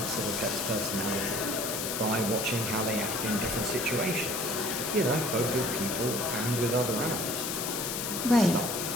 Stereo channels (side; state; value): left; noise; hiss, 3 dB below the sound